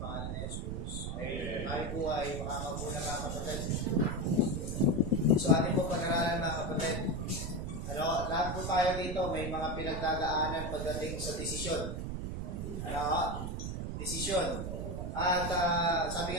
ni Jesus. Amen. Tayo po ay makakaupo na mga kapatid. So ating po pag-aralan mga kapatid. Lahat po tayo dito may mga pinagdadaanan pagdating sa desisyon. Desisyon. At sabi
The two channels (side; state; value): right; noise; rumble, 4 dB below the sound